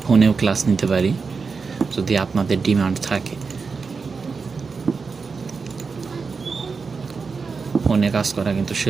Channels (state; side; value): quieter; left; 4.9 dB